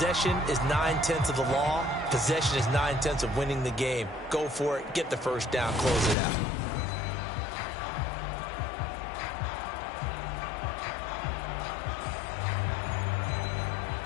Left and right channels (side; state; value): right; drops out; at 6.2 s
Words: is 9/10 of the law. Possession is 9/10 of winning the game. Go for it. Get the first down. Close it out.